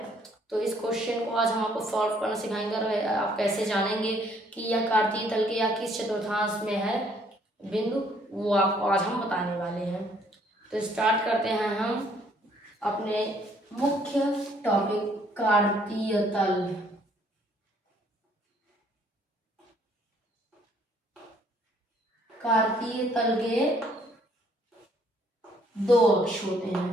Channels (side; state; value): both; normal; correlation 0.64